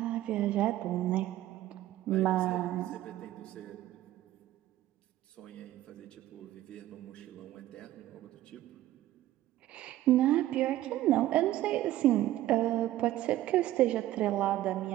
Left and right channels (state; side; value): quieter; left; 14.5 dB